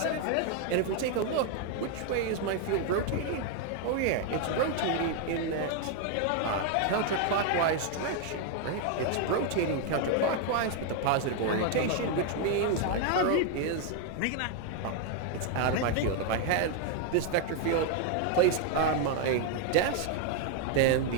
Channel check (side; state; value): both; different; correlation 0.01